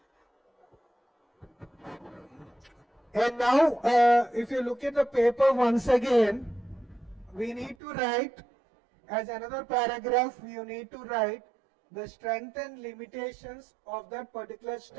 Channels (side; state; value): left; drops out; at 7.8 s